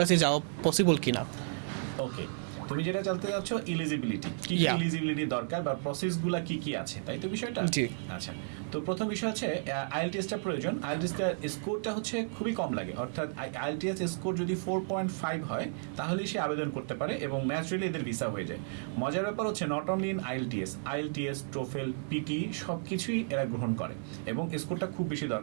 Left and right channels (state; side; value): silent; left; 56 dB below the other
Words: যাওয়া পসিবল কিনা? ওকে, তুমি যেটা জানতে যাচ্ছ এলিজিবিলিটি, কি কি Yeah. এলিজিবিলিটি দরকার বা প্রসেসগুলো কি কি আছে, তাই তো বিষয়টা? জি। আচ্ছা, তো প্রথম বিষয় হচ্ছে আইএলটিএসটা প্রয়োজন। আইএলটিএসটার স্কোরটা হচ্ছে খুবই কম লাগে, অর্থাৎ আইএলটিএস স্কোর যদি 4.5 হয় তাহলেই সে আবেদন করতে পারে এবং ন্যাচুরালি এদের ভিসা হয়ে যায়। মজার ব্যাপার হচ্ছে not only in IELTS, TOEFL, PTE সব কিছুই এরা গ্রহণ করে এবং স্কোরটা খুব বেশি